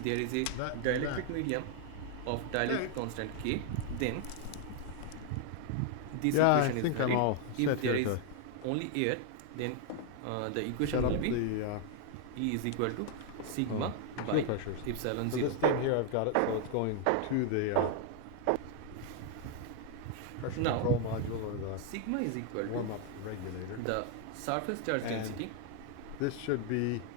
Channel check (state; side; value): different; both; correlation 0.00